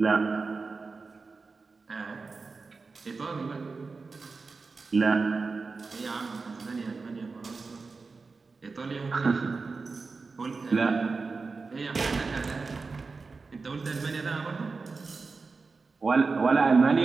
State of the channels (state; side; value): quieter; left; 4.3 dB